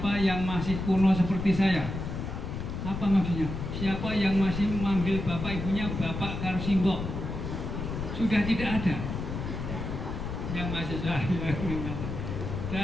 yang masih kuno seperti saya. Apa maksudnya? Siapa yang masih memanggil bapak ibunya bapak karo simbok? Sudah tidak ada yang mahasiswa.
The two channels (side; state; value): left; noise; rumble, 5 dB below the sound